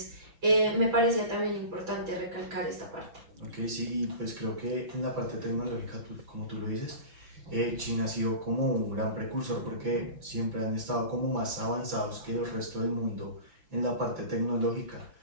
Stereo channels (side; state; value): left; late; 6.0 ms